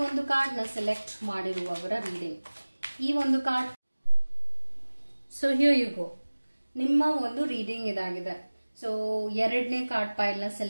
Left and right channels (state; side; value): inverted; both; correlation -1.00